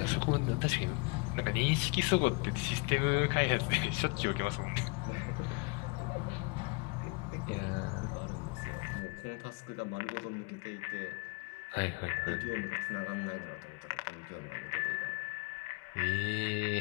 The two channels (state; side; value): quieter; right; 26.7 dB